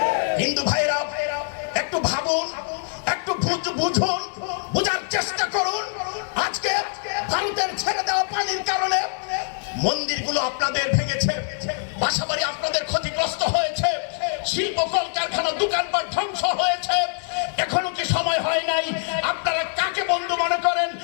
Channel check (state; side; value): silent; right; digital silence